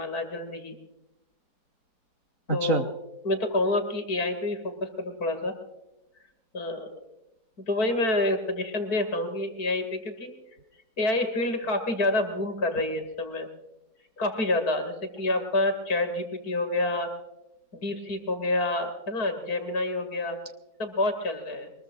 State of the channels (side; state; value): right; late; 4.6 ms